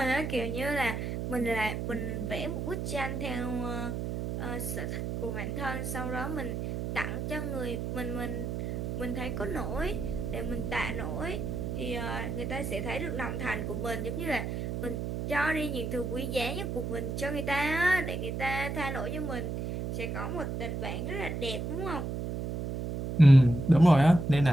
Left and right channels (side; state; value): right; noise; hum, 3 dB below the sound